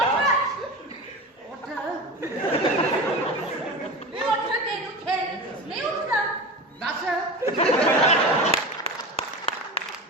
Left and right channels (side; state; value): both; normal; correlation 0.28